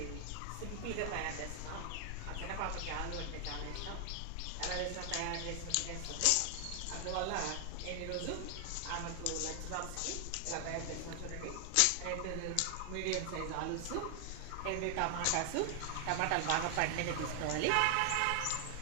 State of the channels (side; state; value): both; different; correlation 0.00